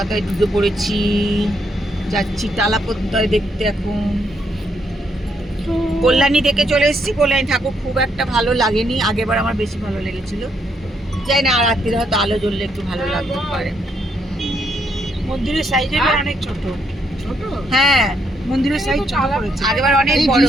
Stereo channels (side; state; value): both; normal; correlation 0.75